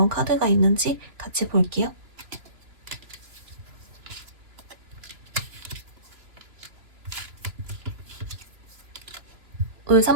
카드가 있는지 같이 볼게요. 울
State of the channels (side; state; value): left; late; 2.9 ms